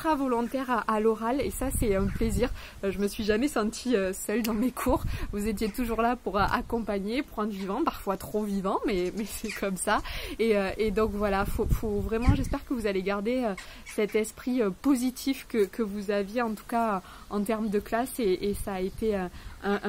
volontaire à l'oral et ça c'est un plaisir. Je me suis jamais sentie seule dans mes cours. Vous étiez toujours là pour accompagner, pour rendre vivant, parfois trop vivant, mais c'est comme ça. Et donc voilà, faut vraiment, j'espère que vous allez garder cet esprit positif que vous aviez en tout cas en termes de classe et ça a été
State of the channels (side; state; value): both; identical; correlation 1.00